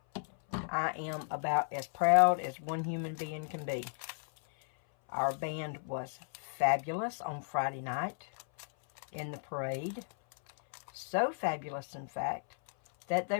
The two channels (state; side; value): silent; right; 55 dB below the other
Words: I am about as proud as one human being can be. Our band was fabulous on Friday night in the parade. So fabulous, in fact, that they